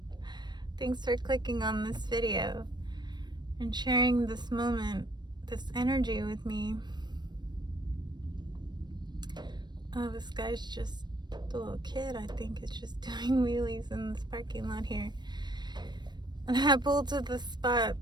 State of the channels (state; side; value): late; left; 0.21 ms